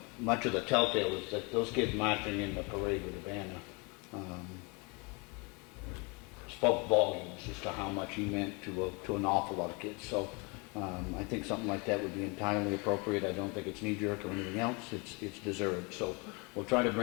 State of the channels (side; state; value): right; quieter; 30.3 dB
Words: much of the telltale is that those kids marching in the parade with the banner spoke volumes as to how much he meant to an awful lot of kids. So I think something like that would be entirely appropriate. I don't think it's knee-jerk or anything else. It's deserved. So we'll try to